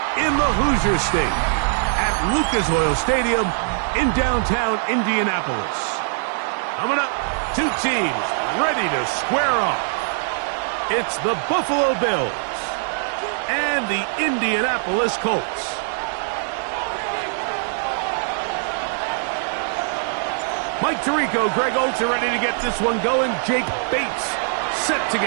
in the Hoosier State at Lucas Oil Stadium in downtown Indianapolis. Coming up, two teams ready to square off. It's the Buffalo Bills and the Indianapolis Colts. Mike Tirico, Greg Oltz are ready to get this one going. Jake Bates set to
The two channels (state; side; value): silent; left; digital silence